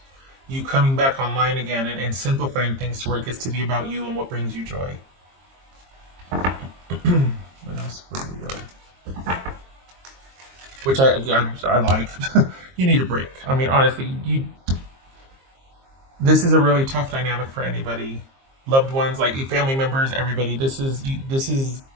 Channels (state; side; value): late; left; 22 ms